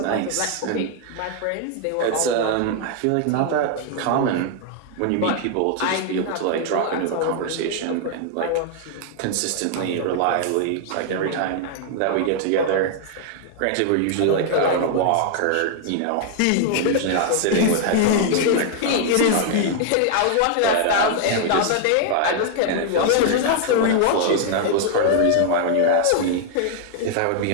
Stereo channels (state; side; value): different; both; correlation 0.00